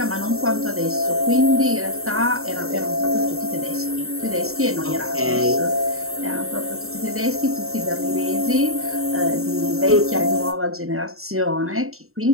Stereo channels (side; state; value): left; late; 0.63 ms